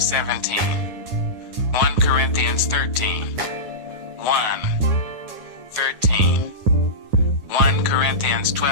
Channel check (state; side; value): late; left; 9.7 ms